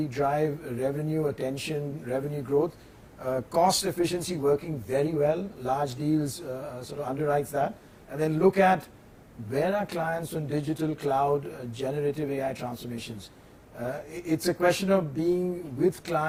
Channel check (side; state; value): both; identical; correlation 1.00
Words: drive revenue, revenue growth, cost efficiency working very well. Large deals sort of underwrites that, and then look at where are clients on digital cloud, generative AI transformations. It's a question of being with